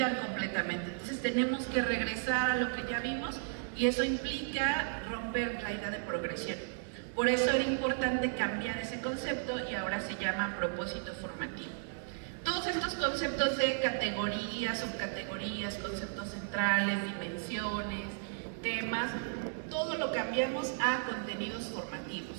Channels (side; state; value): left; silent; digital silence